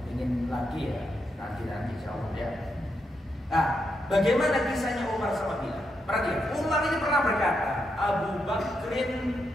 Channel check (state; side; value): normal; both; correlation 0.82